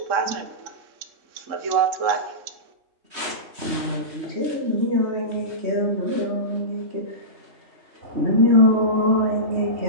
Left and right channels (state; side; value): late; left; 3.2 ms